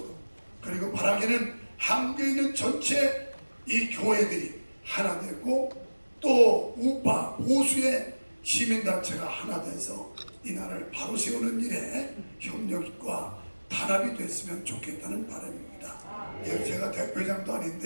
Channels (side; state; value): both; inverted; correlation -1.00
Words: 그리고 바라기는 한국에 있는 전체 이 교회들이 하나 되고 또 우파 보수의 시민단체가 하나 돼서 이 나라를 바로 세우는 일에 협력과 단합이 됐으면 좋겠다는 바람입니다. 제가 대표장도